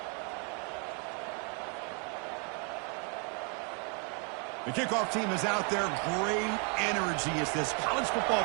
The kickoff team is out there. Great energy as this college football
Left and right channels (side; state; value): left; quieter; 37.5 dB